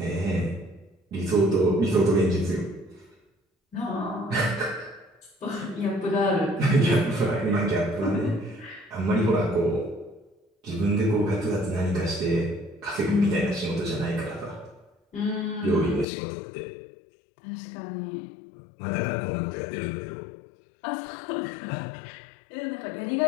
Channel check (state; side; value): drops out; right; at 16.1 s